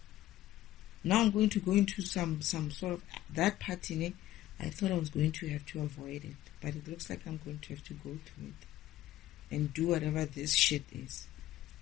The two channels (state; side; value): quieter; right; 14.4 dB